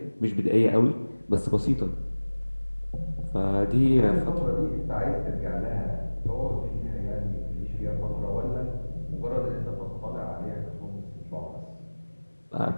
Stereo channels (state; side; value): inverted; both; correlation -1.00